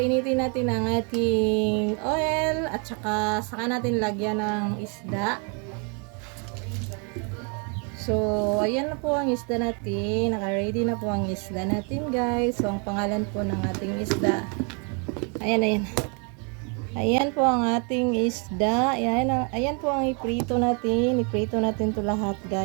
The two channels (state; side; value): quieter; left; 36.5 dB